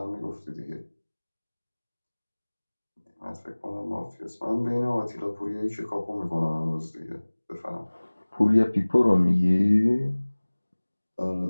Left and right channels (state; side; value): inverted; both; correlation -1.00